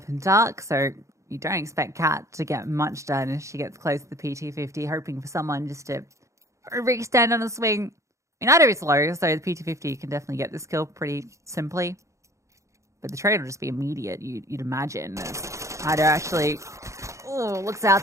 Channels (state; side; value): late; left; 0.15 ms